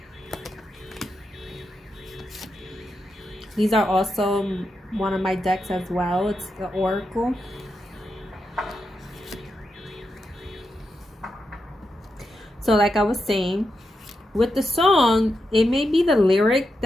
These are also one of my decks as well. It's the Oracle. So like I was saying, with the song, it may be the lyric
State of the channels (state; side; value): normal; both; correlation 0.86